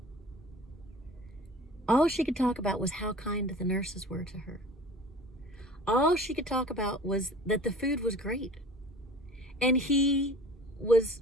All she could talk about was how kind the nurses were to her. All she could talk about was that the food was great. And he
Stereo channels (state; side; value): normal; both; correlation 0.43